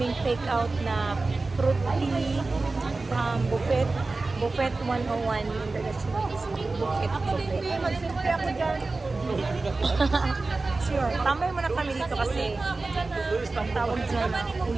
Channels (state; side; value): quieter; left; 3.5 dB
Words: take out na fruit tea from Buffet 101 International Buffet. Magsimple ako dyan. Sure. Tambay muna kami dito kasi ang tawag dyan,